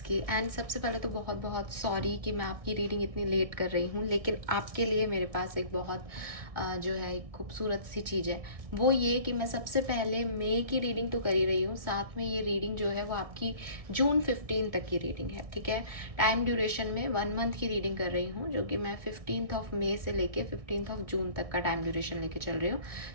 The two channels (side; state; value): left; late; 1.6 ms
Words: की। एंड सबसे पहले तो बहुत बहुत सॉरी कि मैं आपकी रीडिंग इतनी लेट कर रही हूँ, लेकिन आपके लिए मेरे पास एक बहुत जो है एक खूबसूरत सी चीज़ है। वो ये कि मैं सबसे पहले मई की रीडिंग तो कर ही रही हूँ, साथ में ये रीडिंग जो है वो आपकी जून 15 तक की रीडिंग है। ठीक है, टाइम ड्यूरेशन में 1 मंथ की रीडिंग कर रही हूँ, जो कि मैं 15 मई से लेके 15 जून तक का टाइम ड्यूरेशन लेके चल रही हूँ।